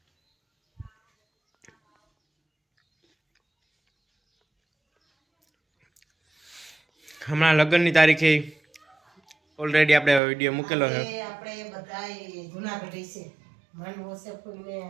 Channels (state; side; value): drops out; left; at 10.2 s